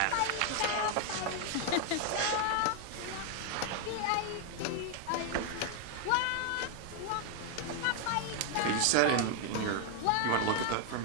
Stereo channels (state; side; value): different; both; correlation 0.01